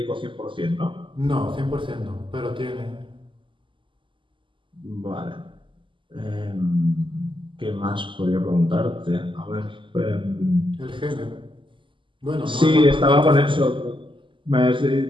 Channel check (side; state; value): left; late; 0.24 ms